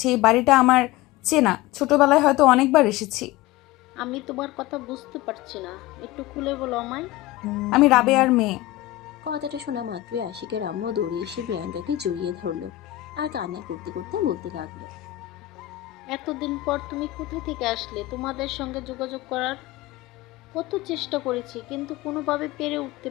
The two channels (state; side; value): quieter; right; 16.7 dB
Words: এই বাড়িটা আমার চেনা, ছোটবেলায় হয়তো অনেকবার এসেছি। আমি তোমার কথা বুঝতে পারছি না, একটু খুলে বলো আমায়। আমি রাবেয়ার মেয়ে। কথাটা শোনা মাত্রই আশিকের আম্মু দৌড়ে এসে প্রিয়াঙ্কাকে জড়িয়ে ধরলো আর কান্না করতে করতে বলতে লাগলো, এতদিন পর তুমি কোথায় থেকে আসলে? তোমাদের সঙ্গে যোগাযোগ করার কত চেষ্টা করেছি, কিন্তু কোনোভাবে পেরে উঠতে